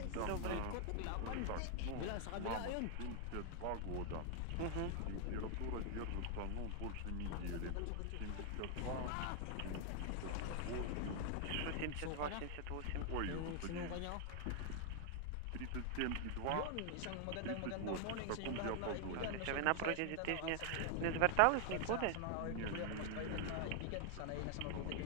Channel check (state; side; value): different; both; correlation 0.00